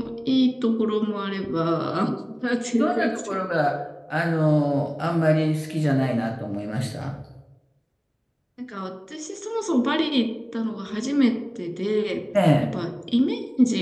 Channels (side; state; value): both; identical; correlation 1.00